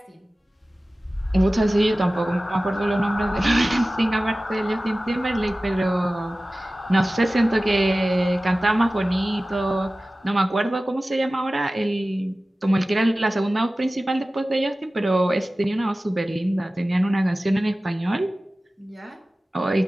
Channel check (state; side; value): normal; both; correlation 0.96